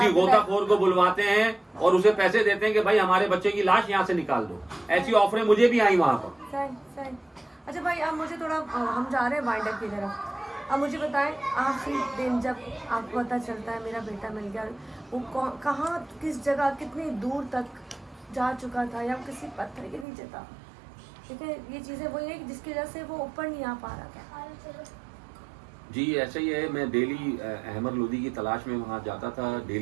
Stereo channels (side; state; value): left; drops out; at 20.1 s